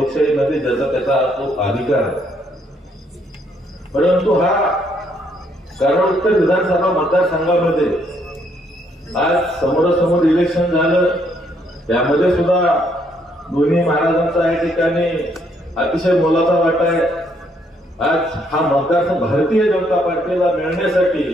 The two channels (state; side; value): normal; both; correlation 0.70